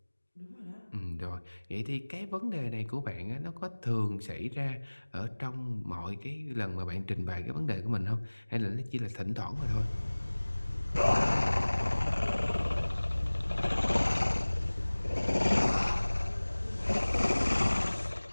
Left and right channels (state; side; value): inverted; both; correlation -1.00